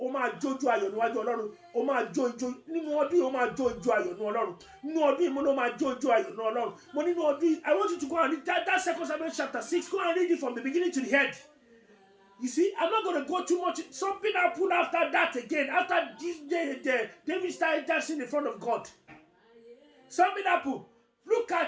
máa jójú ayọ̀ níwájú Ọlọ́run. Ó máa jó ijó nínú ọdún yìí, ó máa jó ijó ayọ̀ níwájú Ọlọ́run. Nínú ọdún yìí mo ló máa jó ijó ayọ̀ níwájú Ọlọ́run. Mo nínú ọdún yìí, I want you to go and read that 2 Samuel chapter 6. Go and read it from the beginning to the end. You see, I'm not going to go too much. Something happened after that again. After this, David started dancing in front of God. Something happened. Look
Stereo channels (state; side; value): identical; both; correlation 1.00